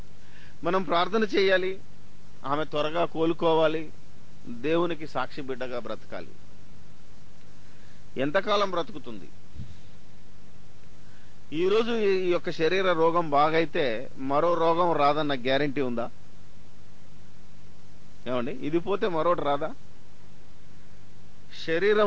మనం ప్రార్థన చేయాలి, ఆమె త్వరగా కోలుకోవాలి, దేవునికి సాక్షి బిడ్డగా బ్రతకాలి. ఎంతకాలం బ్రతుకుతుంది? ఈరోజు ఈ యొక్క శరీర రోగం బాగైతే మరో రోగం రాదన్న గ్యారంటీ ఉందా? ఏమండి, ఇది పోతే మరొకటి రాదా?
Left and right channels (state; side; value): identical; both; correlation 1.00